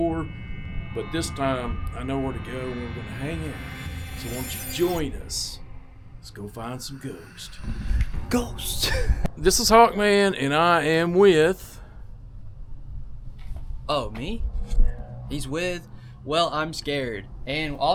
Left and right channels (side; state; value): both; identical; correlation 1.00